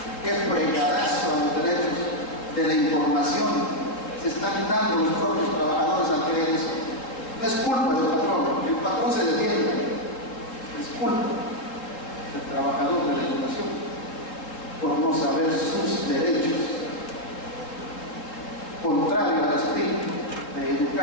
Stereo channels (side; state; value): right; late; 3.7 ms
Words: ¿Qué fregadazo a los derechos de la información se están dando los propios trabajadores al creer eso? No es culpa del patrón, el patrón se defiende, es culpa del trabajador de la educación por no saber sus derechos, contrario al espíritu de